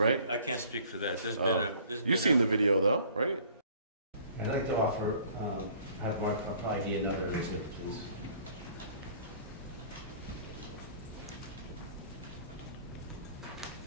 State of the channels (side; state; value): both; inverted; correlation -0.53